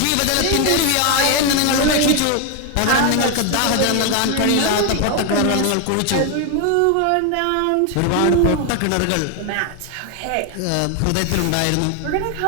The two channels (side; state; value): both; different; correlation 0.01